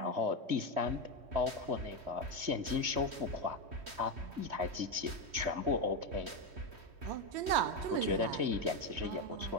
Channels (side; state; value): left; late; 3.1 ms